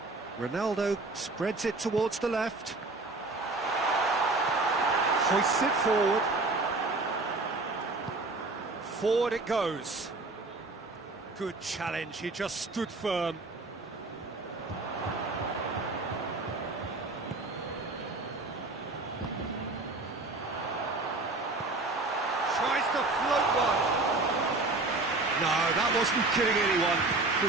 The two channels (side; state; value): left; quieter; 3.3 dB